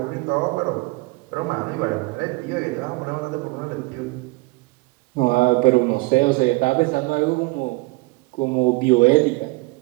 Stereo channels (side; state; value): left; quieter; 24.7 dB